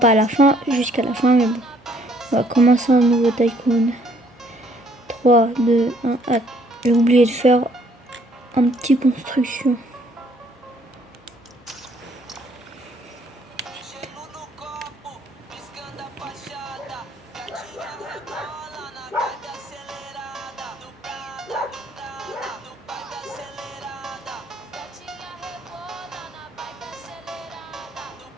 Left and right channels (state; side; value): normal; both; correlation 0.64